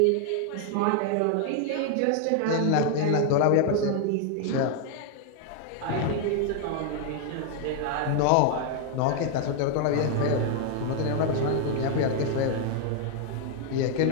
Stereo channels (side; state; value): both; different; correlation 0.00